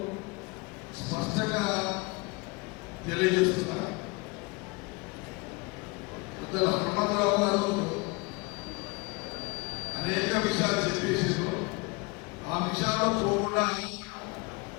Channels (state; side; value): quieter; right; 26.9 dB